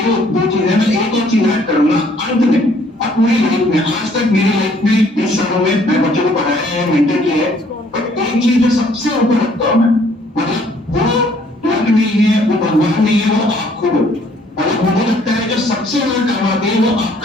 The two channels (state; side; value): normal; both; correlation 0.62